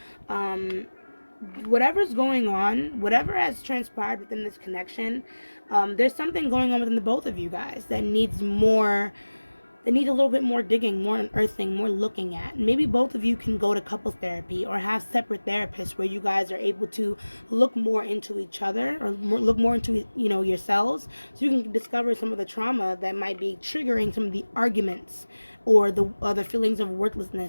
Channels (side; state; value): both; inverted; correlation -1.00